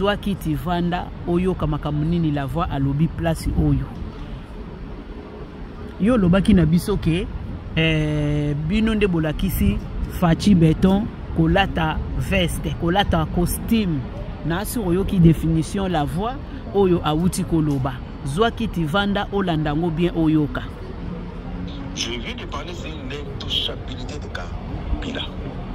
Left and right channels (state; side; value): identical; both; correlation 1.00